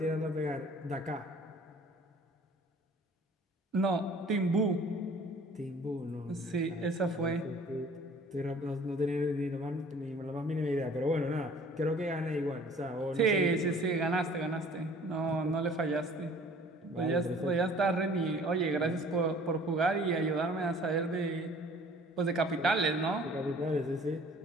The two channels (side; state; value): both; normal; correlation 0.51